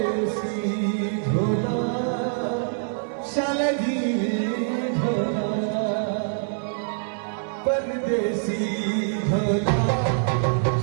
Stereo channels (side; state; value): left; silent; 62 dB below the other